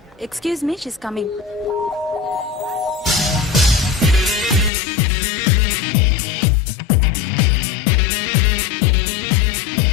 Excuse me, she's coming.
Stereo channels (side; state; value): right; drops out; at 4.7 s